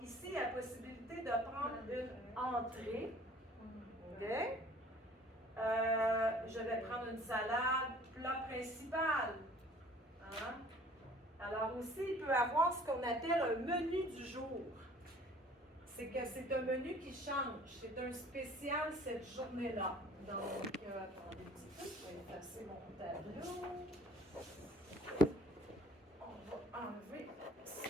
ici, il y a la possibilité de prendre une entrée. OK? Je vais prendre une salade, plat principal. Hein? Alors aussi, il peut avoir ce qu'on appelle un menu du jour. C'est que c'est un menu qui change. C'est un spécial cette journée-là. Donc, attendez un petit peu, je vais effacer mon tableau. On va enlever ça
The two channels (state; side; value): normal; both; correlation 0.52